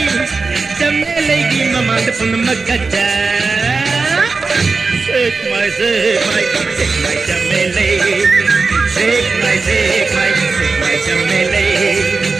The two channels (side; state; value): left; quieter; 4.2 dB